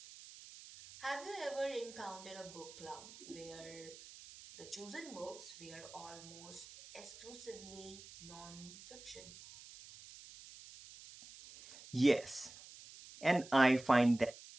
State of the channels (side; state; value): right; noise; hiss, 16 dB below the sound